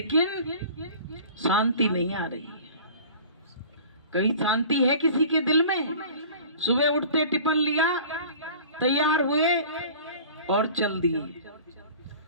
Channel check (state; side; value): inverted; both; correlation -0.43